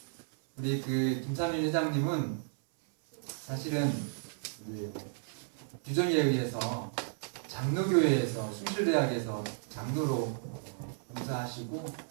우리 그 김삼일 회장님은 사실은 규정에 의해서 장로교회에서 숭실대학에서 장로로 봉사하시고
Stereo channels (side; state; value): left; silent; 56 dB below the other